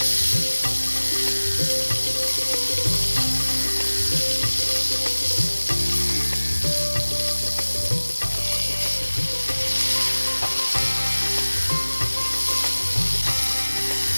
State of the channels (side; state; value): both; inverted; correlation -1.00